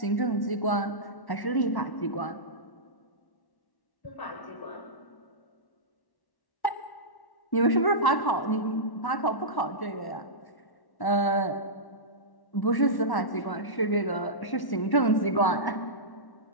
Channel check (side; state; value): right; late; 1.1 ms